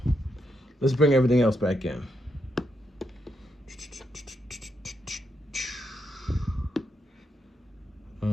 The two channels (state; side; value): normal; both; correlation 0.81